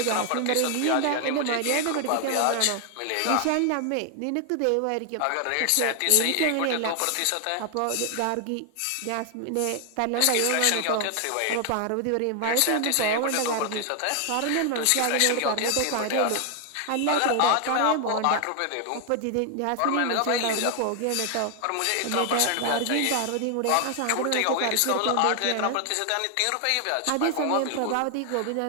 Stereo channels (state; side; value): different; both; correlation 0.00